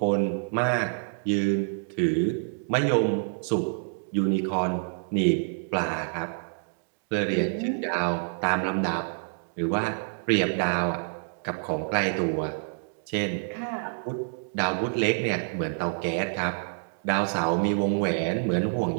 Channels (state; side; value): silent; left; digital silence